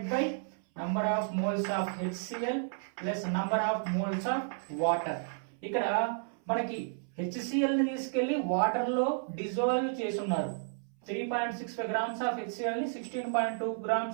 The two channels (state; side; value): silent; left; 56 dB below the other